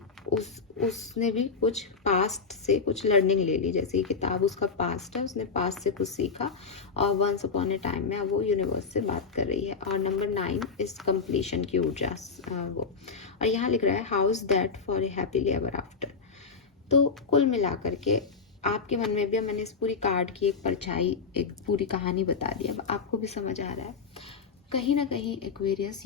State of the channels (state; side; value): quieter; right; 5.0 dB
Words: उसने भी कुछ पास्ट से कुछ लर्निंग ले ली, जैसे ये किताब उसका पास्ट है, उसने पास्ट से कुछ सीखा, और वंस अपॉन ए टाइम में अब वो यूनिवर्स से बात कर रही है। और नंबर 9 इस कंप्लीशन की ऊर्जा वो, और यहाँ लिख रहा है house that for a happily ever after. तो कुल मिलाकर के आपके मन में भी, अब मैंने इस पूरी कार्ड की एक परछाई, एक पूरी कहानी बता दी, अब आपको भी समझ आ रहा है कहीं ना कहीं एक्वेरियस,